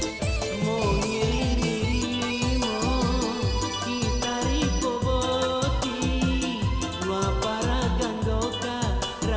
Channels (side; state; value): both; identical; correlation 1.00